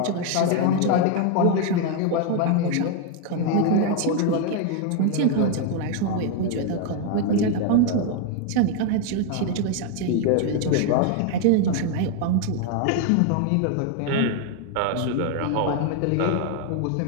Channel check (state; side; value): different; both; correlation 0.01